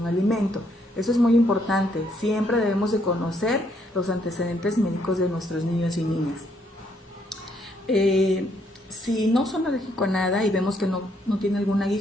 alimento. Eso es muy importante. Siempre debemos de conocer los antecedentes médicos de nuestros niños y niñas. Si no son alérgicos a nada y vemos que no tiene algún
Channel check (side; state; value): both; normal; correlation 0.71